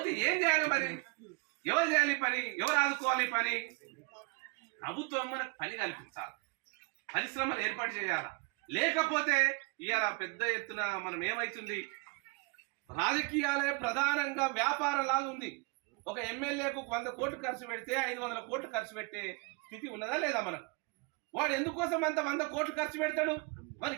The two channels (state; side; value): quieter; left; 30.3 dB